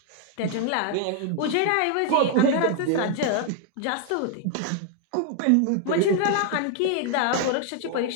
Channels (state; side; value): different; both; correlation 0.00